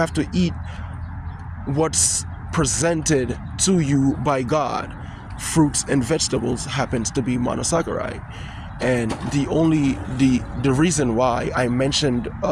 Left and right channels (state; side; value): identical; both; correlation 1.00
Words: to eat what's presented to you by God. Fruits and vegetables happens to be monosaccharide. And the reason why I mentioned